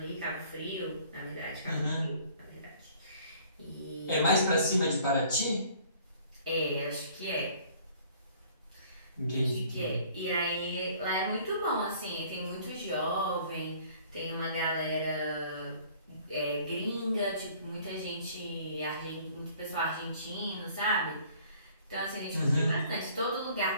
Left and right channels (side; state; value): both; inverted; correlation -0.55